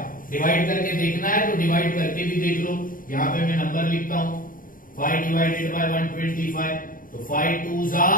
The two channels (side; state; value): right; late; 0.40 ms